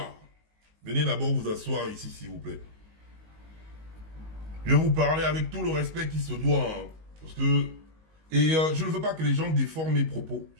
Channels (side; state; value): left; late; 19 ms